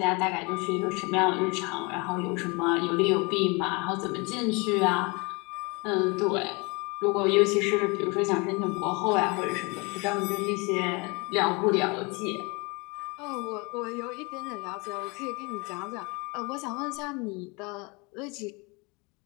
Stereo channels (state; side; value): quieter; right; 28.5 dB